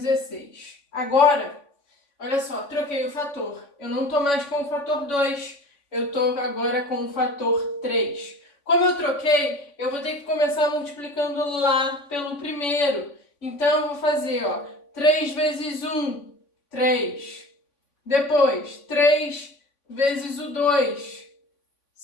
Agora, olha só, troquei o fator. Eu não estou mais com o fator 2, eu estou agora com o fator 3. Como eu troquei, eu vou ter que começar multiplicando lá pelo primeiro. Então, eu vou fazer, ó, 3 vezes 1, 3. Depois, 3 vezes o 2,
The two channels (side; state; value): right; late; 3.5 ms